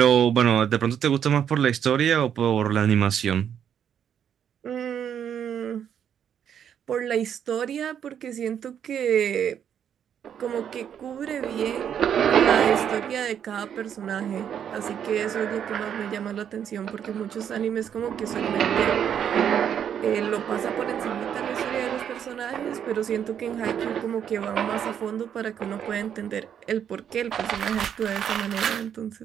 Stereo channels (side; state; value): left; quieter; 8.8 dB